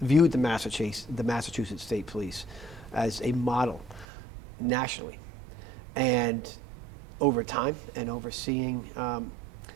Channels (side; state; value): left; drops out; at 4.0 s